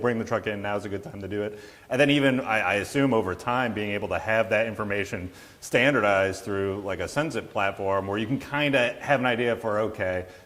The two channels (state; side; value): identical; both; correlation 1.00